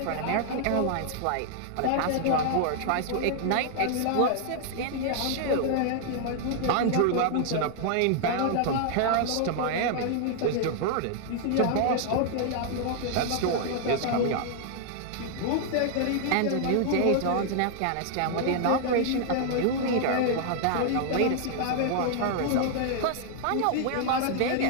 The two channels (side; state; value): both; different; correlation 0.00